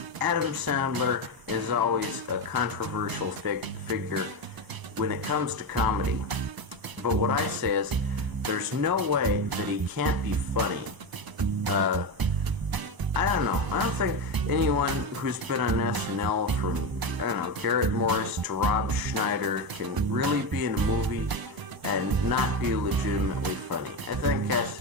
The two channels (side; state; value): left; late; 1.0 ms